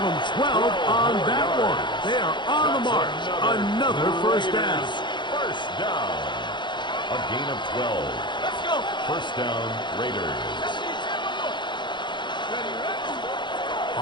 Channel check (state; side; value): late; right; 0.23 ms